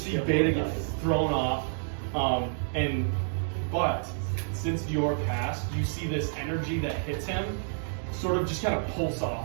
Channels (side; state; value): left; silent; digital silence